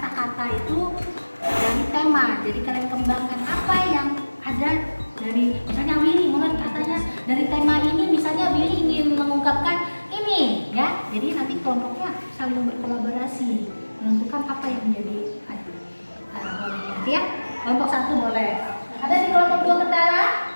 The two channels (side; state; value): both; inverted; correlation -1.00